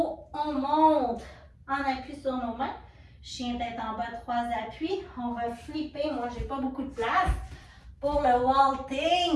on monte en appui sur nos mains. Chien tête en bas, 3 appuis. On va flipper, moi j'ai pas beaucoup de place pour le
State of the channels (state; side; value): identical; both; correlation 1.00